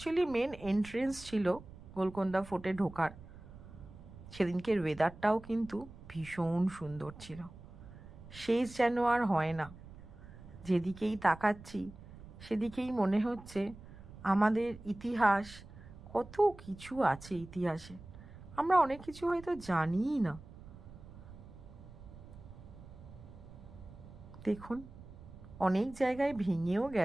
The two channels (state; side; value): noise; right; rumble, 17 dB below the sound